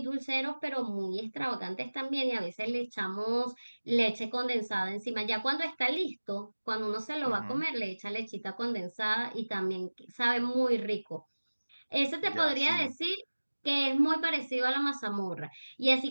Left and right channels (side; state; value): both; inverted; correlation -1.00